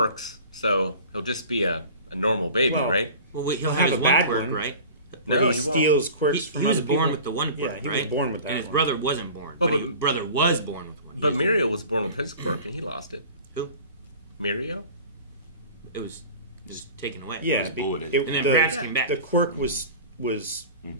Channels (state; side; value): inverted; both; correlation -0.40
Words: so he'll just be a normal baby, Well, right? Well, he'll Have have his a one bad quirk, one. right? No, he he won't. steals quirks from He was other born people. with the one quirk, Yeah, he right? was born with that And his one. brother wasn't born. Oh, but but- his brother was born with one. But Mirio was born with his quirk and he lost it. Who? Mirio? It was just taken away. Yeah, was bulleted. And then Bratz came back. the quirk was